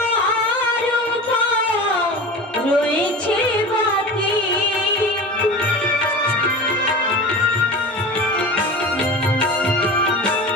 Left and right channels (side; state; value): both; normal; correlation 0.33